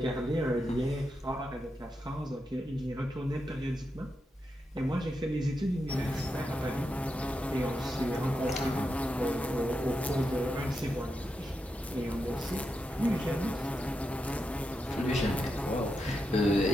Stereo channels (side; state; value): both; normal; correlation 0.86